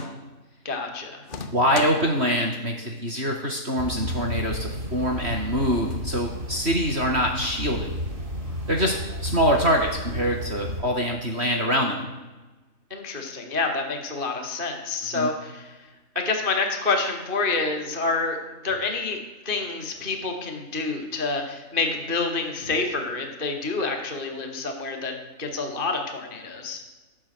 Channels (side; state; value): left; late; 3.1 ms